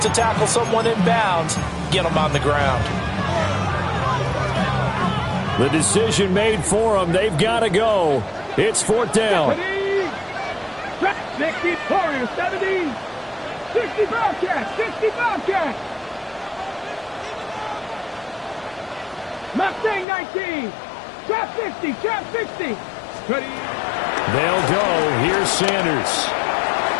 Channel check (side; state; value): right; drops out; at 20.1 s